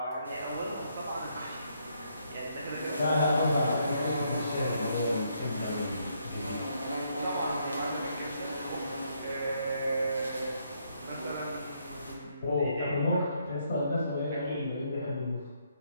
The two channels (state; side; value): inverted; both; correlation -0.73